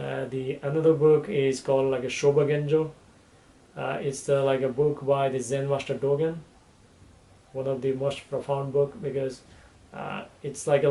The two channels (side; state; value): both; identical; correlation 1.00